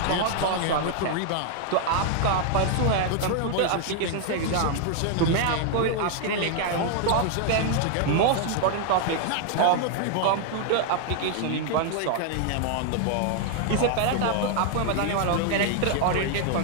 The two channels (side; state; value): both; different; correlation 0.00